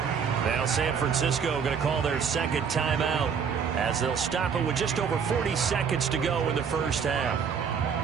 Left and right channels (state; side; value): quieter; left; 6.7 dB